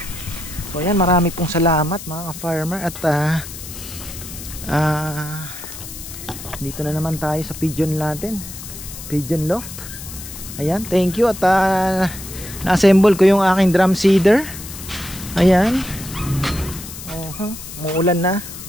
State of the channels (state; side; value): noise; left; hiss, 12 dB below the sound